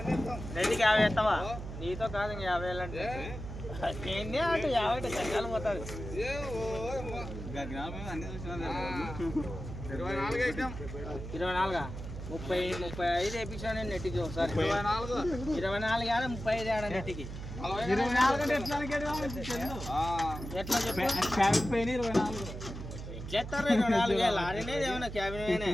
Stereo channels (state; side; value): noise; right; hum, 9 dB below the sound